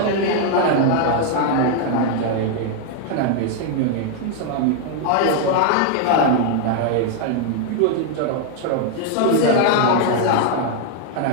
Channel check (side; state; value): both; different; correlation 0.00